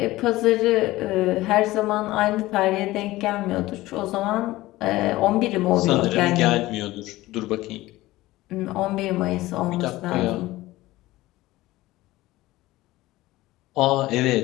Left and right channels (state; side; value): quieter; right; 17.8 dB